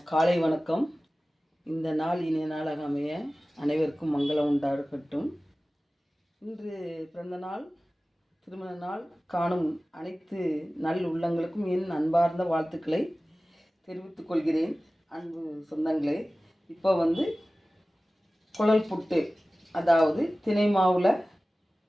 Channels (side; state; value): both; normal; correlation 0.97